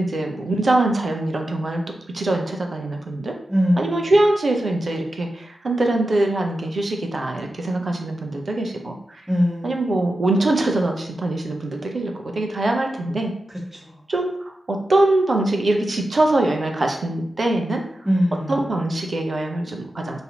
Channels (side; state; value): both; normal; correlation 0.91